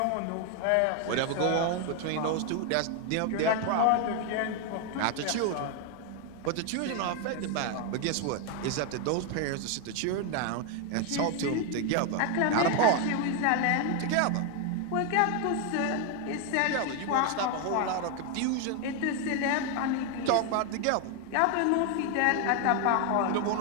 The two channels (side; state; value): both; different; correlation 0.01